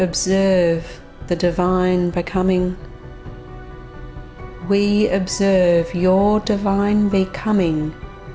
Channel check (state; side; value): identical; both; correlation 1.00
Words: the divine becoming. We observe your divine becoming